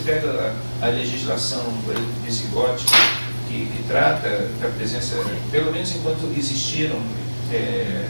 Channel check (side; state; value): both; inverted; correlation -1.00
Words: pega a legislação, por exemplo, visigótica, que trata da presença, pelo menos enquanto existiram,